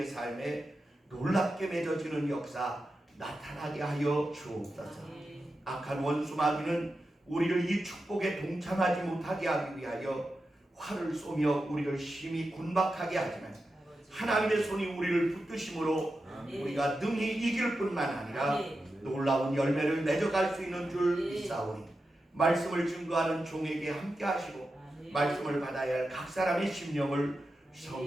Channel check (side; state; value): both; normal; correlation 0.90